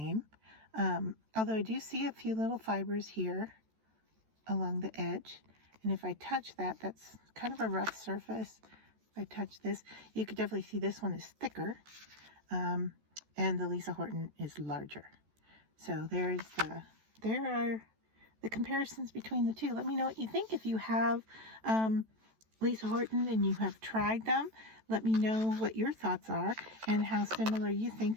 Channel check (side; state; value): left; late; 14 ms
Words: Although I do see a few little fibers here along the edge. And if I touch that, that's kind of a rough surface. If I touch this, you could definitely see this one is thicker. And the Lisa Horton is larger. So there are the comparisons between the two. Let me know what you think. If you have Lisa Horton and you have tried them, let me know what your thoughts are and how similar you